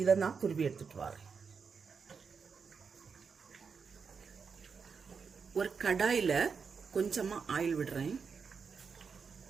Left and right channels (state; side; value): quieter; left; 5.7 dB